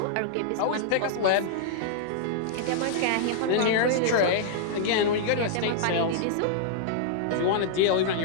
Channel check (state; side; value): different; both; correlation -0.01